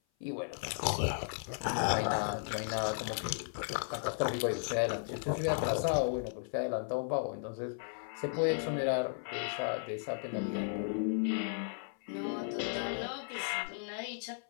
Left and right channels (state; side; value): silent; right; 54 dB below the other